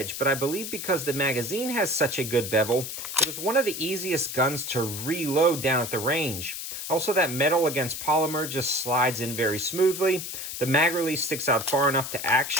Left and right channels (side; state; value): left; noise; hiss, 7 dB below the sound